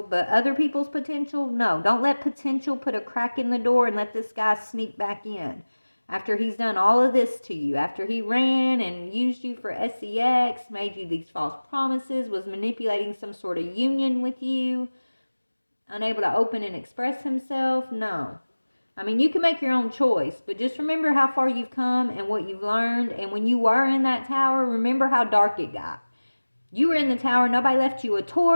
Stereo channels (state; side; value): inverted; both; correlation -1.00